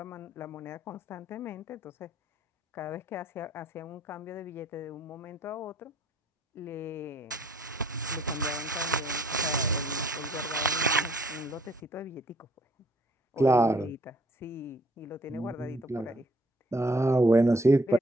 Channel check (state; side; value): normal; both; correlation 0.62